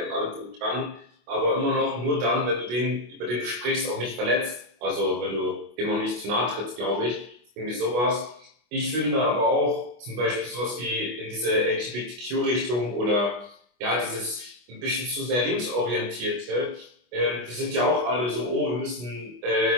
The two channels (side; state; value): left; late; 25 ms